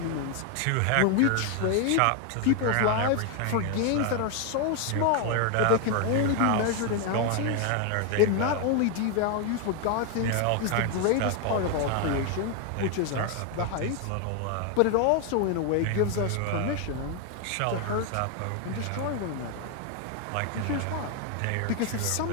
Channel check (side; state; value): both; different; correlation 0.01